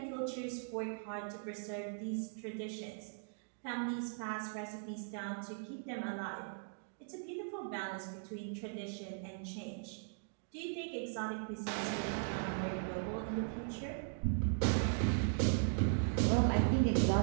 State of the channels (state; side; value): silent; left; digital silence